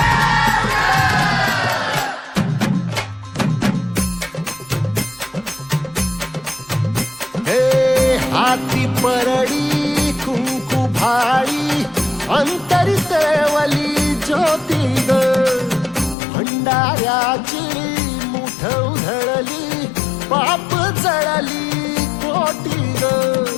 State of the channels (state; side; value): drops out; right; at 16.2 s